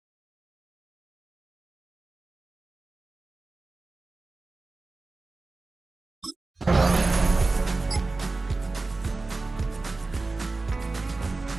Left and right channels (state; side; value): quieter; left; 3.5 dB